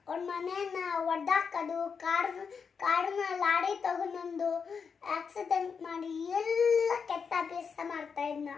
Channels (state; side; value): quieter; right; 6.0 dB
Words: ಹೊಡೆದಾಕೋದು, ಕಾರನ್ನ ಲಾರಿ ತಗೊಂಡು ಆಕ್ಸಿಡೆಂಟ್ ಮಾಡಿ ಎಲ್ಲ ಕೆಟ್ಟ ಅಭ್ಯಾಸ ಮಾಡ್ತಾ ಇದ್ನ.